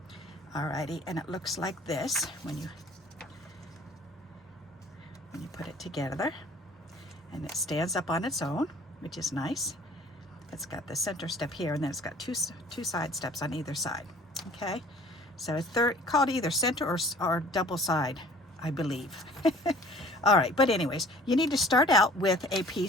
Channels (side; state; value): both; normal; correlation 0.50